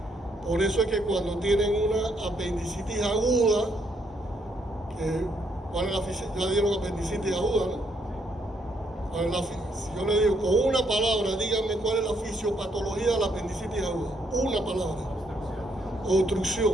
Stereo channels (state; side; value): normal; both; correlation 0.73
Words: Por eso es que cuando tienen una apendicitis aguda, ¿cuál es la fisiopatología? Ya dieron apendicitis aguda, ¿no? Si yo le digo con una palabra, díganme cuál es la fisiopatología de la apendicitis aguda. Una palabra. Obstrucción.